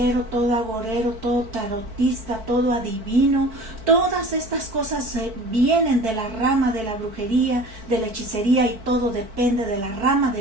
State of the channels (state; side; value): late; left; 4.5 ms